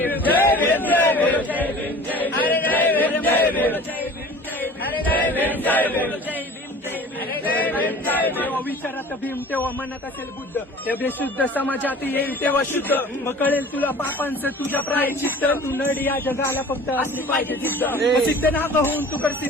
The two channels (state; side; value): normal; both; correlation 0.44